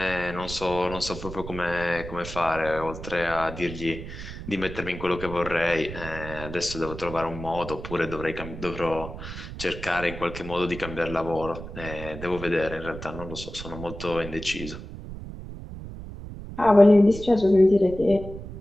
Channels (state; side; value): noise; right; rumble, 11 dB below the sound